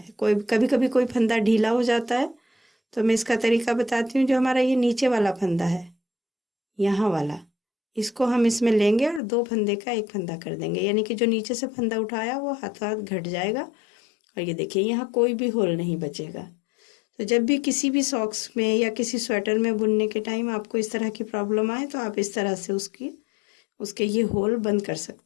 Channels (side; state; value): right; drops out; at 9.2 s